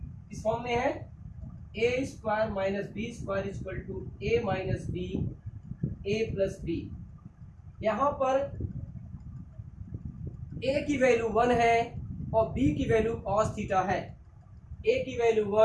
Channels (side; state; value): both; identical; correlation 1.00